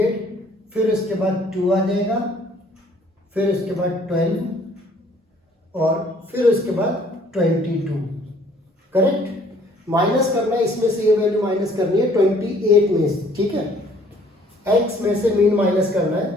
फिर उसके बाद 2 आ जाएगा, फिर उसके बाद 12 और फिर उसके बाद 22, करेक्ट। माइनस करना है इसमें से, ये वैल्यू माइनस करनी है 28 में से, ठीक है। x में से मीन माइनस करना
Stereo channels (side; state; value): both; normal; correlation 0.59